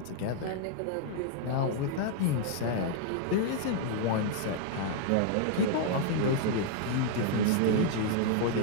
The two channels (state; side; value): different; both; correlation 0.00